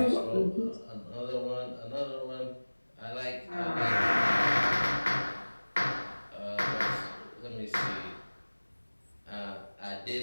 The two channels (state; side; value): inverted; both; correlation -1.00